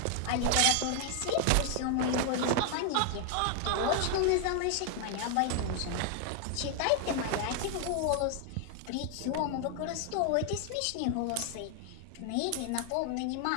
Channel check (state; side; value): different; both; correlation 0.00